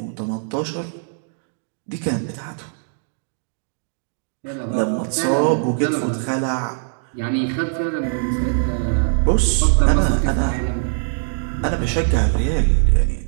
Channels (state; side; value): silent; left; digital silence